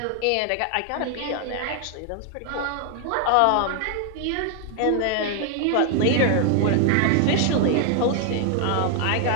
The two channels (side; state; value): both; different; correlation 0.00